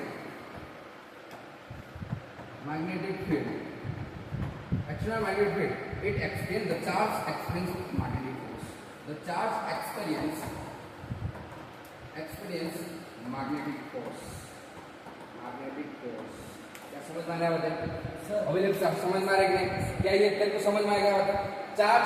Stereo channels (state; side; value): identical; both; correlation 1.00